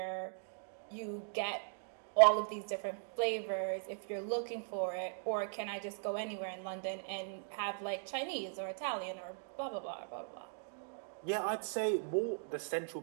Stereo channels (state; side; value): silent; left; digital silence